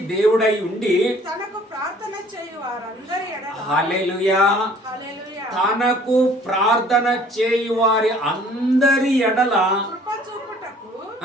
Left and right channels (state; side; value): normal; both; correlation 0.54